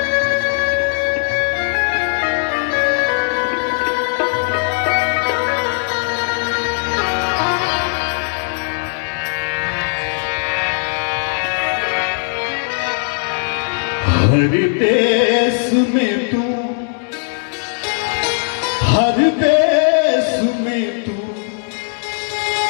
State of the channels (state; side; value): silent; right; 67 dB below the other